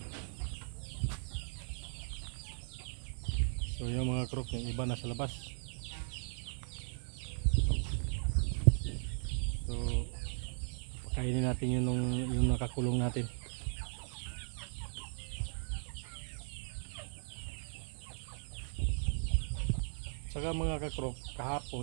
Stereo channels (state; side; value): silent; left; 53 dB below the other